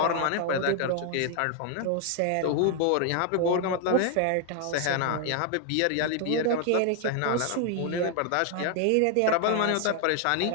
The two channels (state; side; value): different; both; correlation 0.00